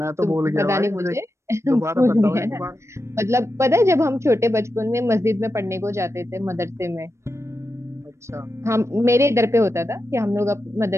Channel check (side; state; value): left; late; 0.13 ms